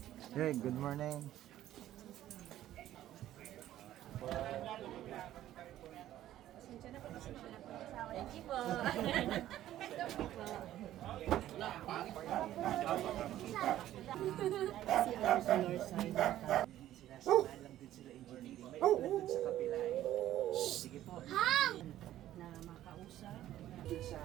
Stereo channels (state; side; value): quieter; left; 13.1 dB